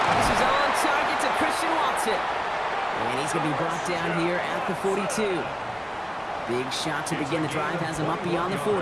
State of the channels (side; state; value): both; identical; correlation 1.00